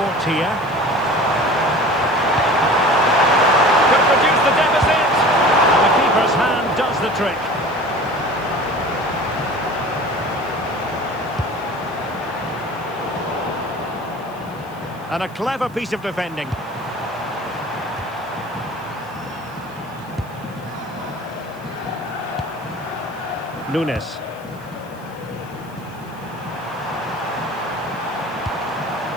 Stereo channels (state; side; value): noise; right; hiss, 26 dB below the sound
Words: here. Could be hat-trick. And a clever piece of defending. Nunes.